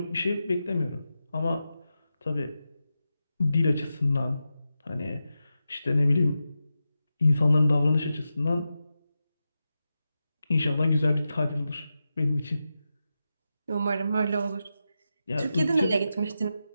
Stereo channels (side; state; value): both; inverted; correlation -0.90